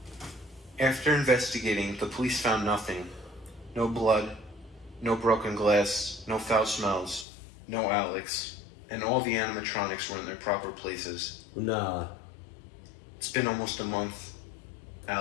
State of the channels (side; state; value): right; drops out; at 7.2 s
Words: After investigating, the police found nothing. No blood, no broken glass, no foul smells, no Alex, and all the animatronics were in their proper places. Nah. It's been almost a month.